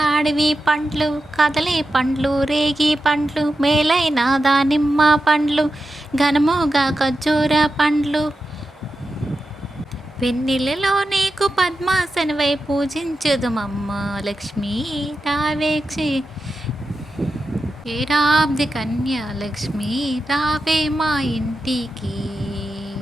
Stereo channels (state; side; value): normal; both; correlation 0.90